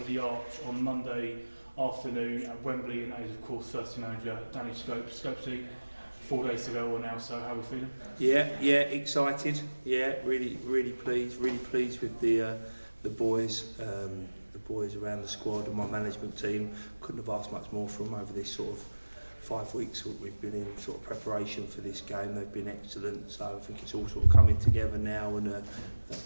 the arch on Monday afternoon at Wembley, and that is of course first team manager Danny Scopesy. 4 days to go now, so how are we feeling? Yeah, excited. Yeah, really pleased with the boys. The boys around the squad and my management team. Couldn't have asked much more from them over this sort of 5 weeks that we've been in sort of preparation for this game. They've been excellent, so I think it's all sort of coming together now, and I don't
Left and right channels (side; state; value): both; inverted; correlation -1.00